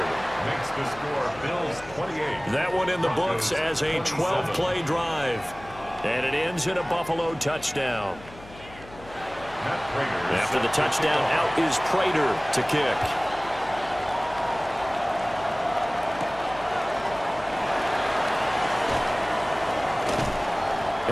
Makes the score Bills 28. That one in the books as a 12-play drive. And it ends in a Buffalo touchdown. After the touchdown, out is Prater to kick.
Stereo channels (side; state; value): left; noise; hum, 19 dB below the sound